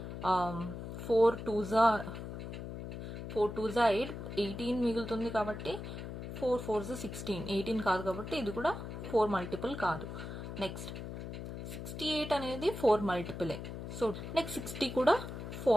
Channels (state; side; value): noise; left; hum, 8 dB below the sound